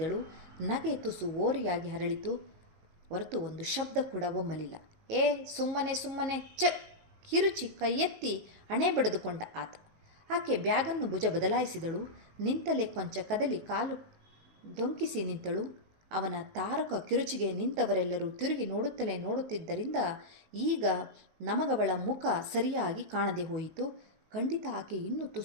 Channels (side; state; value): left; late; 19 ms